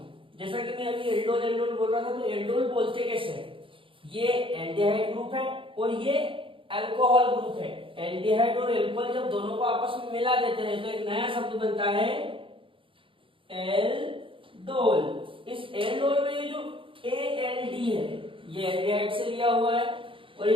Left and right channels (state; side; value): late; left; 0.25 ms